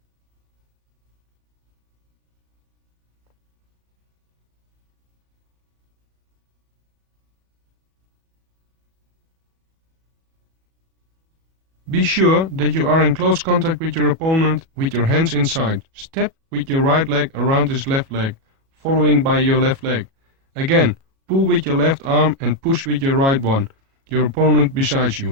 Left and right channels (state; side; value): late; left; 37 ms